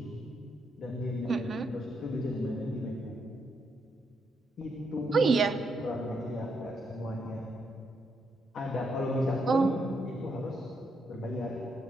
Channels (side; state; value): both; normal; correlation 0.78